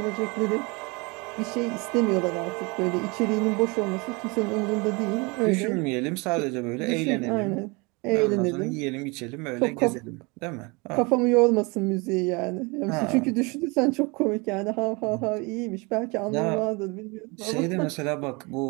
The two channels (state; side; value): quieter; left; 28.0 dB